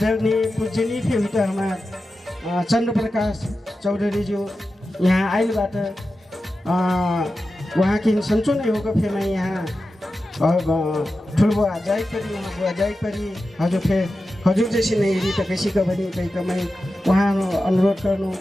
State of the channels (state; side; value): normal; both; correlation 0.92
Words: पूजनीय भी हुई तो हमारे चंद्र प्रकाश चौधरी जी यहाँ आइलबाट वहाँ की सन्चो नहीं होगा फिर मैं यहाँ ठुलबुआ जाई परी वहाँ बुआ जाई परी हजुर जैसी नहीं रही तो कैसी का बनी कहीं का मैं वहाँ अनुरोध